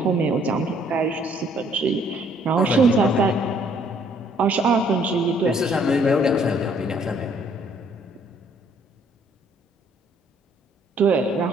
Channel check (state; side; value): normal; both; correlation 0.63